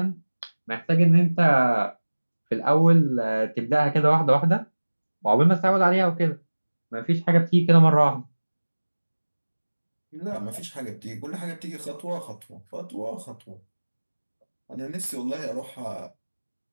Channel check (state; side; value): inverted; both; correlation -1.00